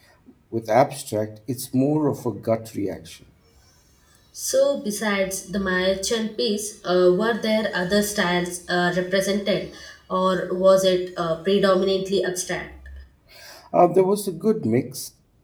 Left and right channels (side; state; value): both; identical; correlation 1.00